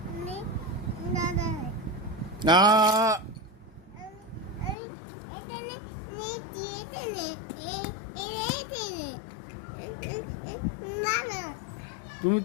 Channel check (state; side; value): drops out; right; at 4.8 s